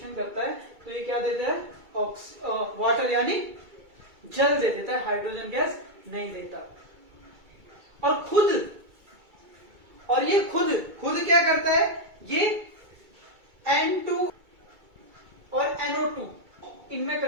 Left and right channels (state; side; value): late; left; 2.3 ms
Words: करता है तो ये क्या देता है, वाटर यानी जल दे देता है, हाइड्रोजन गैस नहीं देता। और ये खुद क्या करता है, ये N2 और NO2 इनमें